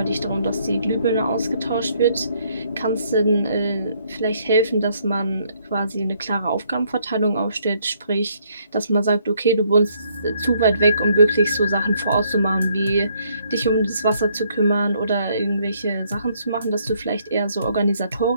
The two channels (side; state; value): both; inverted; correlation -0.69